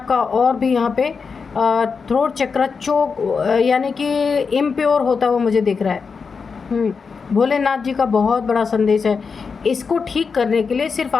और भी यहाँ पे थ्रोट चक्रा चोक यानी कि इम्प्योर होता हुआ मुझे दिख रहा है। भोलेनाथ जी का बहुत बड़ा संदेश है। इसको ठीक करने के लिए सिर्फ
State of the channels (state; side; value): quieter; right; 5.3 dB